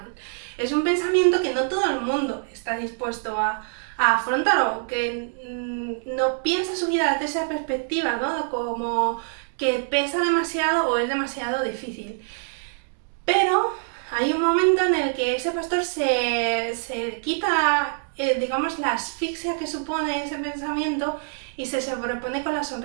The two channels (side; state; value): left; silent; digital silence